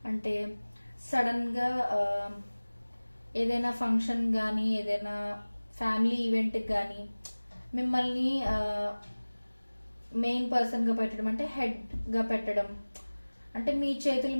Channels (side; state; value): both; inverted; correlation -1.00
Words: అంటే సడన్గా ఏదైనా ఫంక్షన్ కానీ ఏదైనా ఫ్యామిలీ ఈవెంట్కి కానీ మిమ్మల్ని మెయిన్ పర్సన్గా పెట్టడం, అంటే హెడ్గా పెట్టడం, అంటే మీ చేతుల